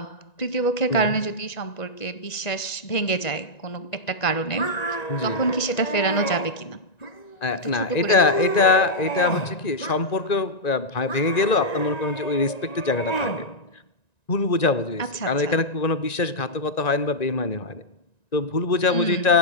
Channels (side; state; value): right; late; 1.9 ms